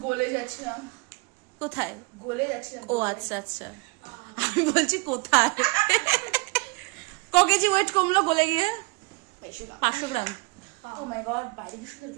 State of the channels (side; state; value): left; quieter; 28.0 dB